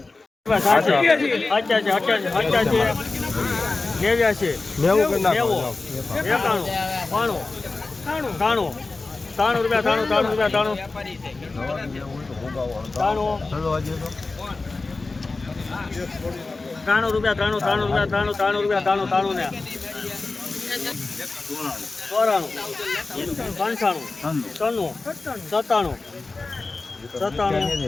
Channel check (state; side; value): quieter; right; 3.6 dB